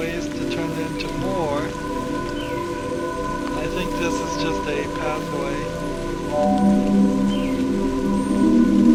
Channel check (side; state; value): both; identical; correlation 1.00